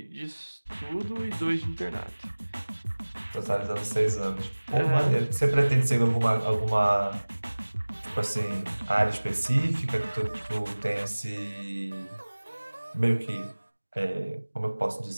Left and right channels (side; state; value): both; inverted; correlation -1.00